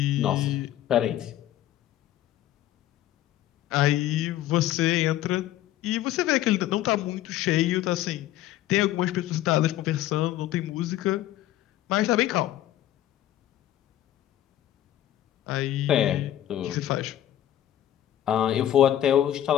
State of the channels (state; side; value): quieter; right; 12.9 dB